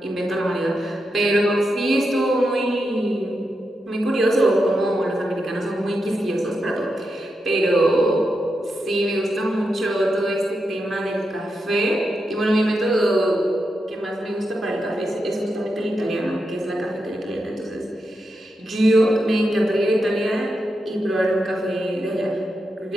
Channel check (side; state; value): both; normal; correlation 0.86